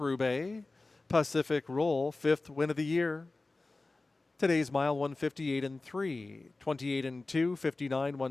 Pacific Roll, 5th win of the year. Today's mile 1:58.3, 28-2, 59,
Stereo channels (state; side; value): quieter; right; 3.3 dB